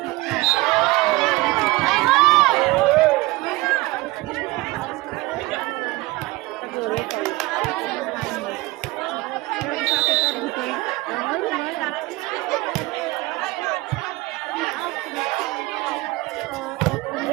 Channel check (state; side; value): quieter; left; 21.1 dB